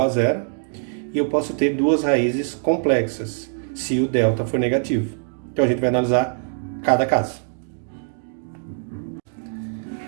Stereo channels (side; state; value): left; silent; digital silence